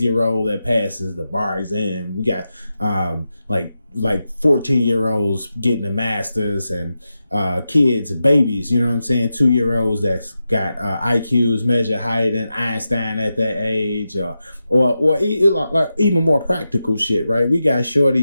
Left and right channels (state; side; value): inverted; both; correlation -0.90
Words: that passes the bar exam. We got like 14-year-olds getting a master's, and kids, babies, you know what I'm saying, 2-year-olds that's got IQs measure higher than Einstein at that age, or like even more practical shit, right? We got